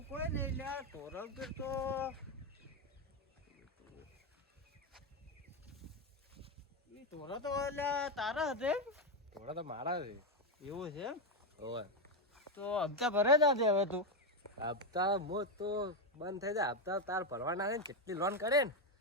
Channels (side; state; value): both; normal; correlation 0.07